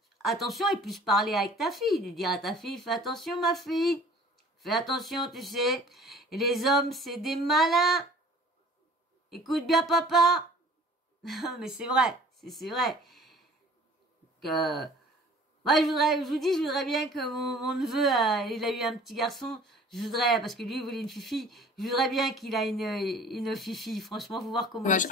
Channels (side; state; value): both; normal; correlation 0.49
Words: attention et plus parler avec ta fille, de dire à ta fille, fais attention ma fille, fais attention, tu sais, et les hommes c'est des malins. Écoute bien papa. Mais c'est vrai, c'est vrai que moi, je voudrais bien que mon neveu, il a eu un petit garçon. Je voudrais, parce que lui, il voulait une fifi. Je voudrais bien qu'il a une fifi. Franchement, faut voir comment.